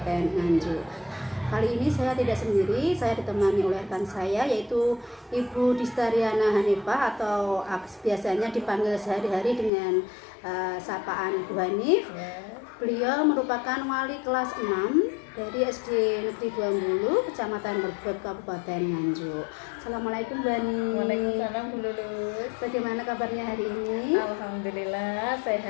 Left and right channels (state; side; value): drops out; right; at 9.7 s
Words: Nganjuk. Kali ini saya tidak sendiri, saya ditemani oleh rekan saya yaitu Ibu Distariana Hanifah atau biasanya dipanggil sehari-hari dengan sapaan Bu Hanif. Beliau merupakan wali kelas 6 dari SD Negeri 20, Kecamatan Merbek, Kabupaten Nganjuk. Assalamualaikum Bu Hanif. Waalaikumsalam Bu Lulus. Bagaimana kabarnya hari ini? Alhamdulillah